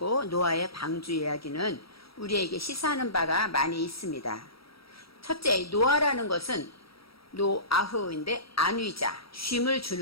노아의 방주 이야기는 우리에게 시사하는 바가 많이 있습니다. 첫째, 노아라는 것은 노아흐인데 안위자, 쉼을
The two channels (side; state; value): right; late; 0.75 ms